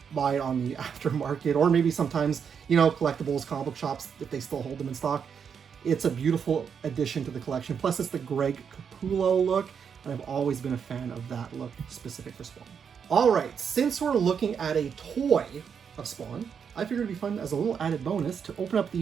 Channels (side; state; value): left; quieter; 7.0 dB